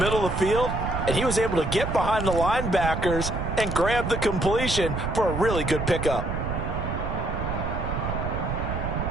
of the field. And he was able to get behind the linebackers and grab the completion for a really good pickup.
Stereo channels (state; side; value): noise; right; rumble, 3 dB below the sound